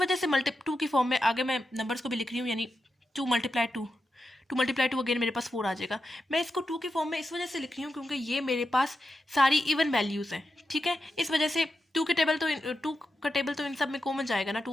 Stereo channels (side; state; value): both; normal; correlation 0.89